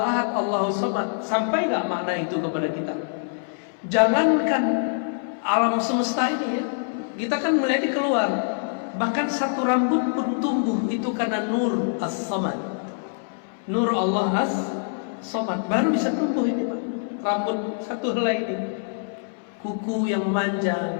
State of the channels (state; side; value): silent; right; 61 dB below the other